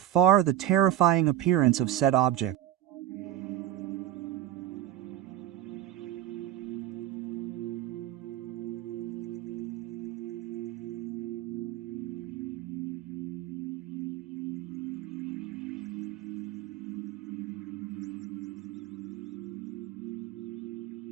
the terrifying appearance of said object.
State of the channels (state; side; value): quieter; left; 12.7 dB